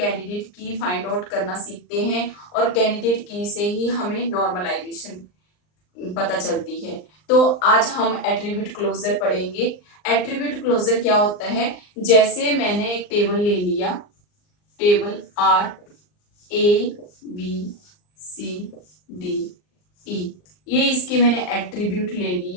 की फाइंड आउट करना सीखते हैं और कैंडिडेट की से ही हमें नॉर्मलाइजेशन पता चलती है। तो आज हम एट्रीब्यूट क्लोजर पढ़ेंगे। एट्रीब्यूट क्लोजर क्या होता है? जैसे मैंने एक टेबल ले लिया, table R A B C D E, ये इसके मैंने एट्रीब्यूट ले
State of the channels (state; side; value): late; right; 39 ms